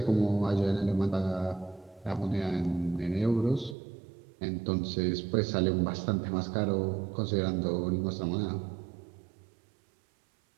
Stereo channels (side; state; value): left; drops out; at 3.8 s